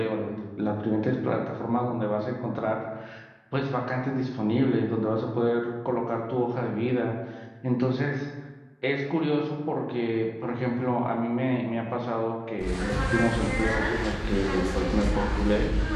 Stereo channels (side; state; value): both; identical; correlation 1.00